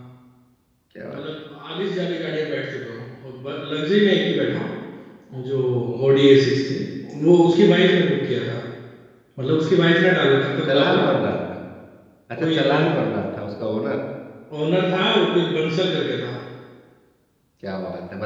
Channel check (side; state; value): both; identical; correlation 1.00